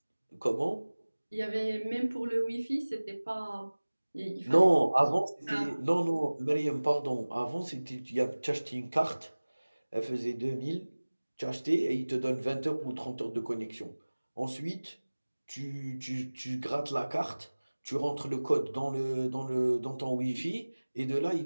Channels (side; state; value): both; inverted; correlation -1.00